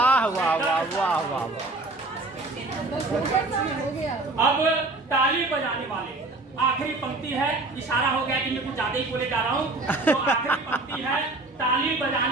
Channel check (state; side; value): quieter; left; 3.0 dB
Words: वाह वाह वाह वाह। अब ताली बजाने वाले, आखिरी पंक्ति है, इशारा हो गया कि मैं कुछ ज्यादा ही बोले जा रहा हूँ, तो आखिरी पंक्ति है, ताली